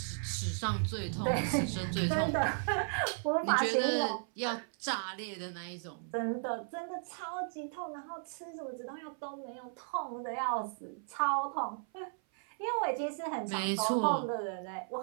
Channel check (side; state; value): left; silent; 54 dB below the other